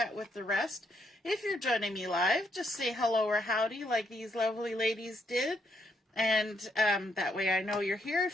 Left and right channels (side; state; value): both; normal; correlation 0.75